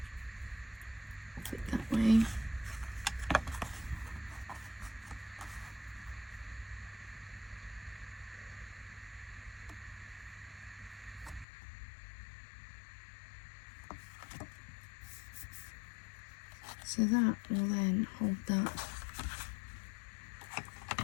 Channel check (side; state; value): right; drops out; at 11.5 s